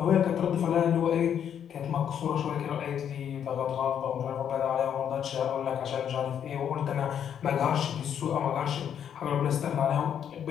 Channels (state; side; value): quieter; right; 8.8 dB